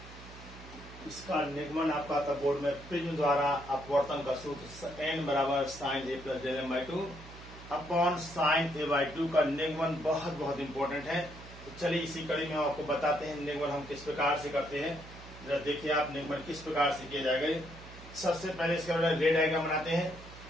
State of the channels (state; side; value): noise; right; hum, 17 dB below the sound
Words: इसका निगमन आपका आता बोर्ड में प्रिज्म द्वारा अपवर्तन का सूत्र n बराबर sine A plus del M by two upon sine A by two का निगमन बहुत इंपॉर्टेंट है। तो चलिए इसी कड़ी में हम आपको बताते हैं निगमन हम किस प्रकार से करते हैं। जरा देखिए आप निगमन किस प्रकार से किया जाएगा। सबसे पहले इसका रे डायग्राम बनाते हैं।